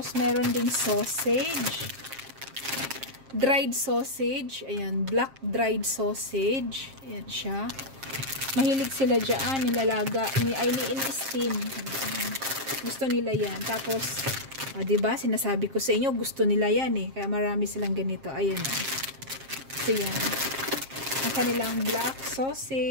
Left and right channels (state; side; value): late; left; 7.5 ms